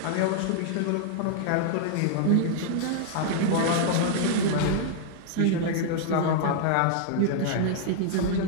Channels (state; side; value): different; both; correlation -0.01